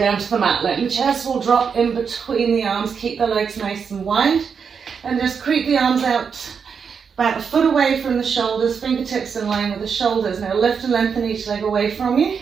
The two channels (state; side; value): quieter; left; 6.3 dB